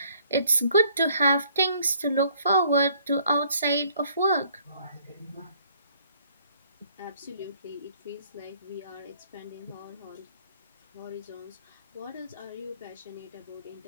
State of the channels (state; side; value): inverted; both; correlation -0.62